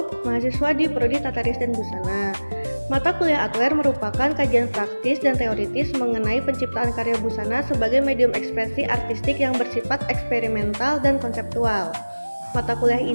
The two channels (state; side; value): inverted; both; correlation -1.00